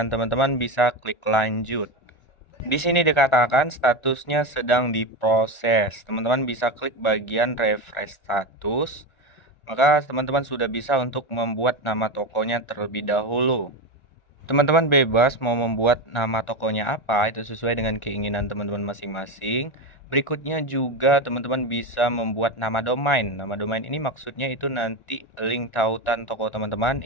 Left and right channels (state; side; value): late; right; 1.4 ms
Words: teman-teman bisa klik lanjut. Di sini dikatakan statusnya sedang diproses. Teman-teman bisa klik bagian refresh status. Maka teman-teman sudah bisa untuk membuat nama tokonya terlebih dahulu. Teman-teman bebas mau membuat nama tokonya apa, itu sesuai dengan keinginan teman-teman masing-masing. Berikutnya juga teman-teman bisa membuat nama domain. Nama domain ini maksudnya itu nanti link tautan toko teman-teman